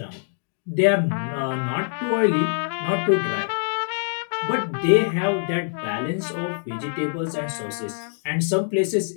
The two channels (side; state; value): right; silent; digital silence